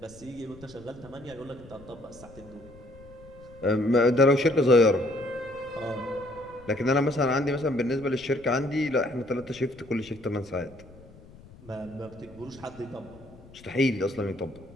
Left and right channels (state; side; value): noise; left; rumble, 21 dB below the sound